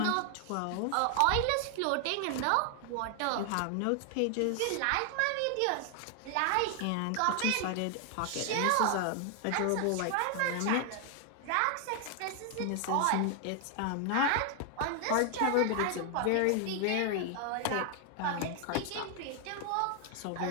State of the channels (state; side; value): different; both; correlation 0.00